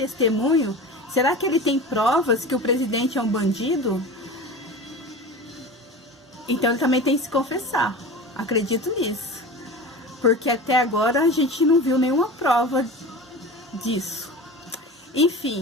Será que ele tem provas que o presidente é um bandido? Então ele também tem que se confessar. Acredito nisso. Porque até agora a gente não viu nenhuma prova disso.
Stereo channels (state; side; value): normal; both; correlation 0.32